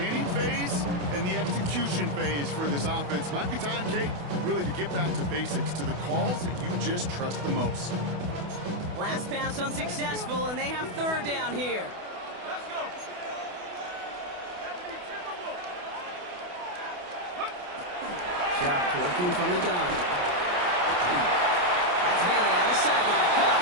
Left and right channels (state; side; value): late; left; 28 ms